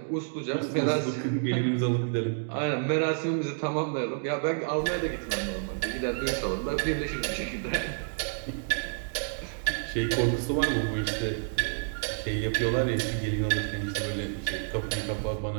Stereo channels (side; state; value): left; silent; digital silence